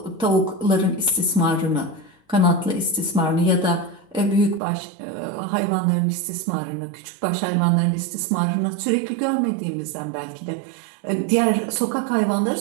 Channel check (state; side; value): drops out; left; at 4.6 s